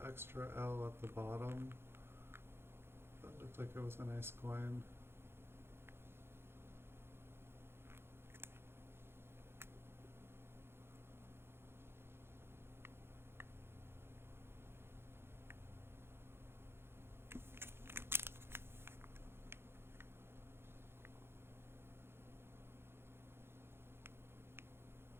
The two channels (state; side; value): late; left; 0.11 ms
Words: extra L at the bottom. That looked like it was a nice coin.